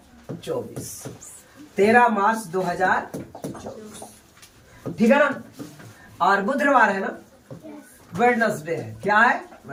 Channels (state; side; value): identical; both; correlation 1.00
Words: 13 मार्च 2024, ठीक है ना? और बुधवार है ना, वेडनेसडे है। क्या है?